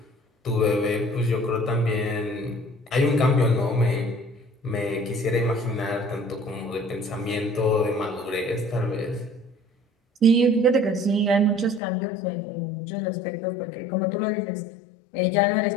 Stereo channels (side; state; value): right; drops out; at 11.8 s